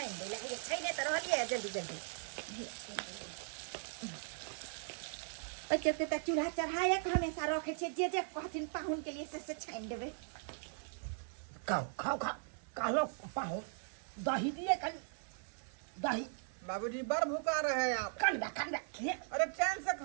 दे लगे छाने त रहलिए जल्दी जल्दी ओके त चूल्हा चढ़ाए के हमेशा रखे छे जे कहथिन पाहुन के लिए से छान देबे। खाओ खाओ खाओ कहलो पाहुन दही दिए कन दही बाबूजी बड़ भूखा रहे हैं आप। कन खे अरे चैन से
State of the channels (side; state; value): left; silent; 52 dB below the other